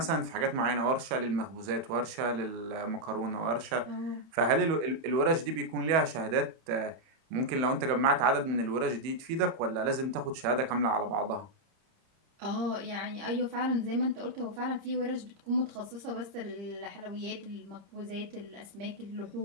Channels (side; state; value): left; late; 31 ms